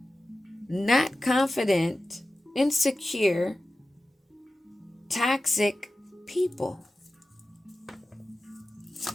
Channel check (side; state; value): both; normal; correlation 0.94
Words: not confident, insecure, toxic people.